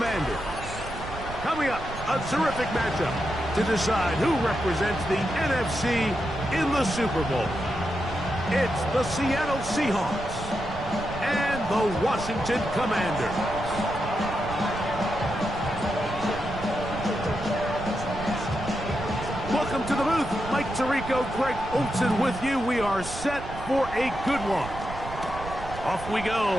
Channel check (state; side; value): noise; right; rumble, 11 dB below the sound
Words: Coming up, a terrific matchup to decide who represents the NFC in the Super Bowl. It's the Seattle Seahawks and the Washington Commanders. Welcome to the booth. Mike Tirico, Greg Olsen with you. We are set for a good one. Off we go